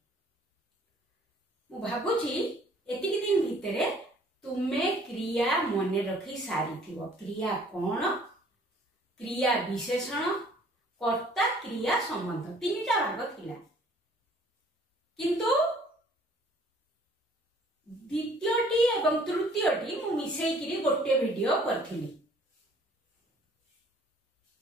मु भाबुची एतिक दिन भितरे तुमे क्रिया मने रखी सारी थिबो। क्रिया कोन, क्रिया विशेषण, कर्ता, क्रिया संबंध तीनटा भाग थिला, किंतु द्वितीयटी एवं तृतीयटी मु मिसेइकिरी गोटे वीडियो करथिली।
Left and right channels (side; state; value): both; normal; correlation 0.57